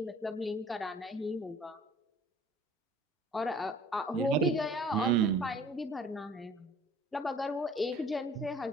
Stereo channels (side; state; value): both; normal; correlation 0.51